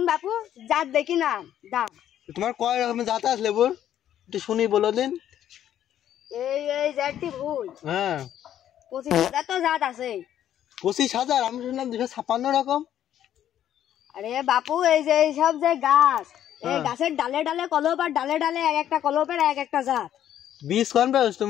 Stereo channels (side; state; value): right; quieter; 10.9 dB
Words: বাপু জাত দেখি না দাম তোমার কয় রকমের জাত আছে লেবুর একটু শুনি বলো দিন এই জাতটি ভুল হ্যাঁ 25,000 তো জাত আছে 25,000 আমি শুনলাম 256 রকম আরে বাপু এই যে সব যে গাছ এই গাছের ডালে ডালে কলপ আর ডালে ডালে এক একটা কলপের এক একটা জাত বীজ কোন পাওছ